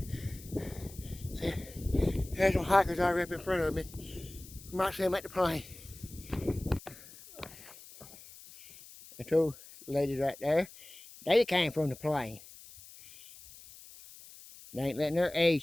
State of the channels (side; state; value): left; noise; hiss, 19 dB below the sound